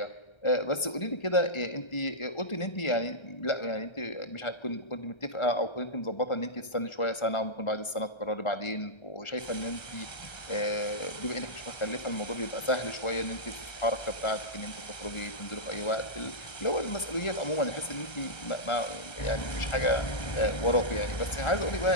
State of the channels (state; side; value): late; right; 1.3 ms